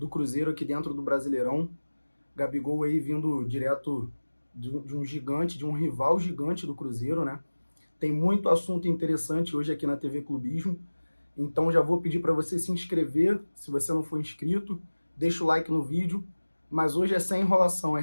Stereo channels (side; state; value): both; inverted; correlation -1.00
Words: Cruzeiro aqui dentro do Brasileirão. Gabigol aí vindo direto de um gigante, de um rival gigante do Cruzeiro, né? Tem muito assunto interessante hoje aqui na TV Clubismo. Então já vou pedir para você se inscrever, se você não for inscrito, deixa o like no vídeo. Mas hoje é sem enrolação, hein,